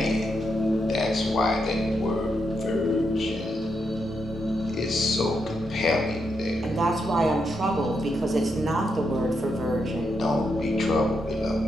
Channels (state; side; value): normal; both; correlation 0.82